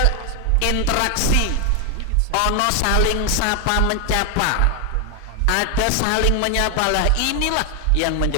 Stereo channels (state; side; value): different; both; correlation 0.01